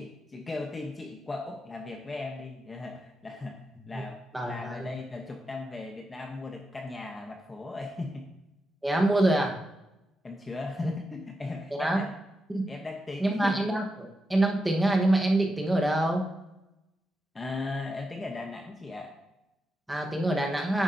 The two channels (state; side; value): normal; both; correlation 0.87